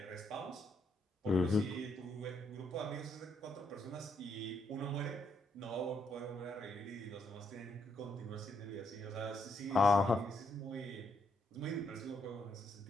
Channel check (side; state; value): both; normal; correlation 0.75